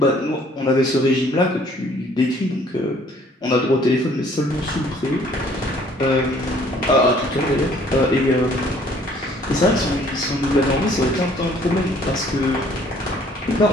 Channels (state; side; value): normal; both; correlation 0.59